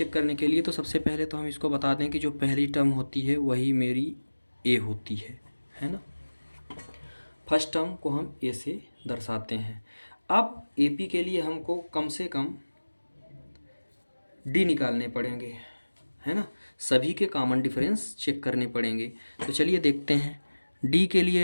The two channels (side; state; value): both; inverted; correlation -1.00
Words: करने के लिए तो सबसे पहले तो हम इसको बता दें कि जो पहली टर्म होती है वही मेरी ए होती है ना। फर्स्ट टर्म को हम ए से दर्शाते हैं। अब एपी के लिए हमको कम से कम डी निकालने पड़ेंगे, है ना। सभी के कॉमन डिफरेंस चेक करने पड़ेंगे। तो चलिए देखते हैं। डी के लिए